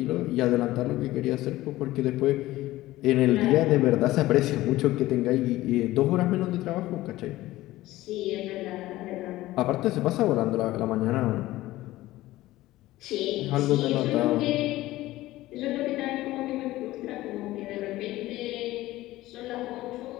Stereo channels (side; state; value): right; quieter; 16.8 dB